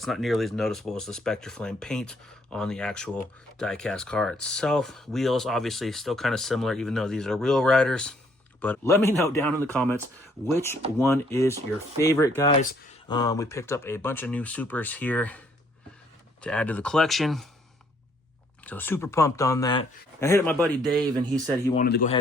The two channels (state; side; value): normal; both; correlation 0.66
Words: not nearly as noticeable as the Spectraflame paint on the actual diecast car itself. Wheels obviously still kind of similar, even though these are Wheel Riders. But let me know down in the comments which one is your favorite, guys. We picked up a bunch of new Supers here to add to the collection. So super pumped on that. I hit up my buddy Dave, and he said he wanted to go